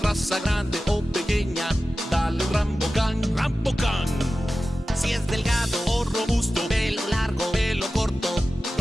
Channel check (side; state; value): both; normal; correlation 0.95